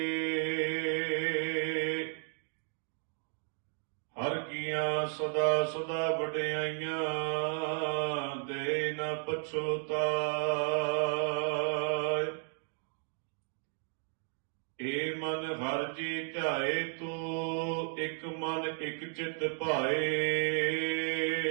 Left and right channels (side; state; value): left; silent; 55 dB below the other